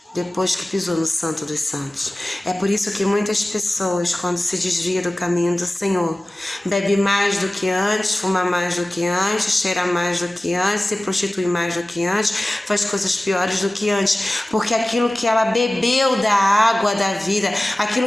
depois que pisou no Santo dos Santos. É por isso que muitas pessoas, quando se desviam do caminho do Senhor, bebe mais do que antes, fuma mais do que antes, cheira mais do que antes, se prostitui mais do que antes, faz coisas piores do que antes, porque aquilo que ela bebeu da água da vida,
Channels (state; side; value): normal; both; correlation 0.97